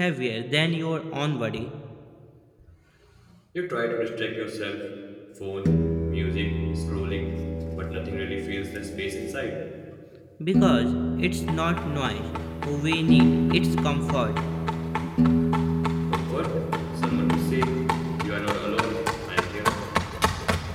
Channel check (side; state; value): both; identical; correlation 1.00